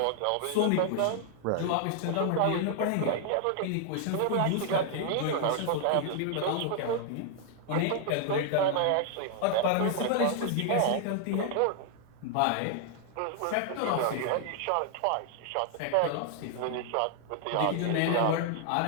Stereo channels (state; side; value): different; both; correlation 0.00